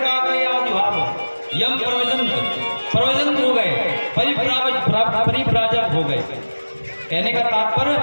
यम प्रवजंत हो गए, परिप्राजक हो गए। कहने का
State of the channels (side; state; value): both; inverted; correlation -1.00